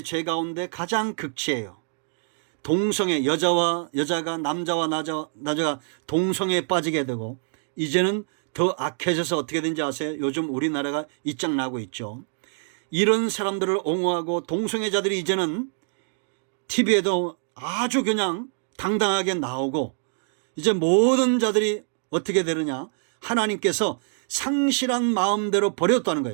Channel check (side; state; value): left; silent; digital silence